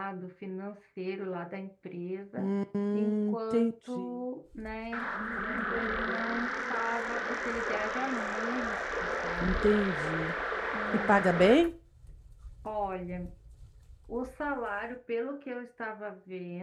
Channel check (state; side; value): identical; both; correlation 1.00